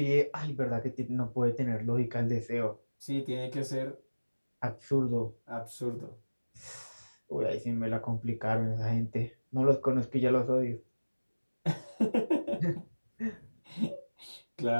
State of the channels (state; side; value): inverted; both; correlation -1.00